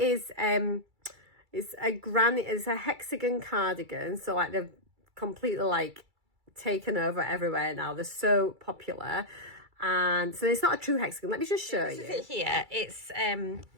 it's a hexagon cardigan. So like they've completely like taken over everywhere now. They're so popular. And so it's not a true hexagon. Let me just show you. This is it here.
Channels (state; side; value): late; left; 2.3 ms